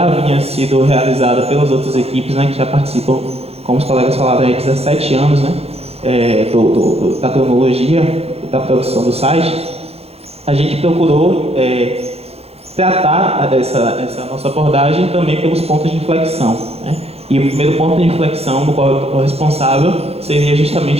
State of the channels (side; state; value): left; late; 0.29 ms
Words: havia sido realizada pelas outras equipes, né, que já participam, como os colegas falaram, há 17 anos, né, da cronologia, da produção do site. A gente procurou tratar essa nossa abordagem também pelos pontos de inflexão, né? E o primeiro ponto de inflexão do qual eu estou responsável seria